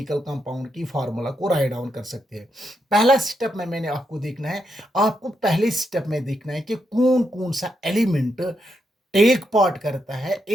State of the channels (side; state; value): both; normal; correlation 0.81